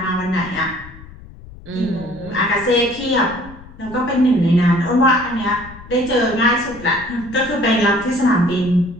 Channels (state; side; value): noise; left; rumble, 18 dB below the sound